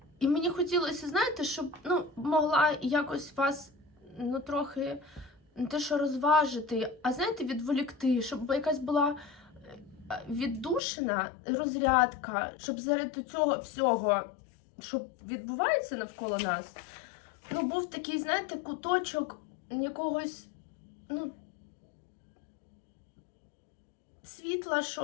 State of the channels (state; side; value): drops out; right; at 10.8 s